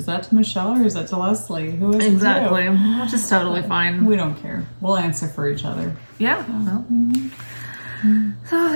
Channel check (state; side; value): inverted; both; correlation -1.00